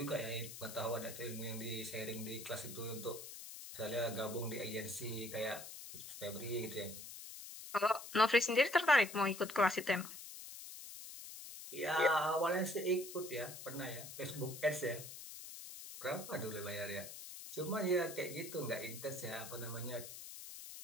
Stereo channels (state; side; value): noise; left; hiss, 11 dB below the sound